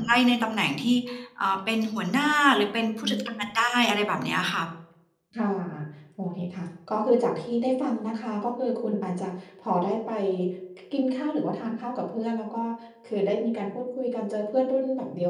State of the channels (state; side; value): identical; both; correlation 1.00